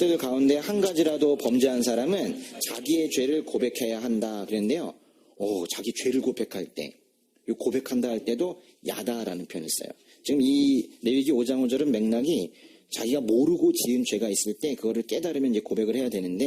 가운데 한 가지라도 범죄한 사람은 자기의 죄를 고백해야 한다 그랬는데요. 자기 죄를 고백할 때, 고백한다 할 때도 야다라는 표현을 써요. 지금 이 레위기 5장 5절은 맥락이 자기가 모르고 지은 죄가 있을 때 그거를 깨달으면 이제 고백을 해야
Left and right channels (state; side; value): identical; both; correlation 1.00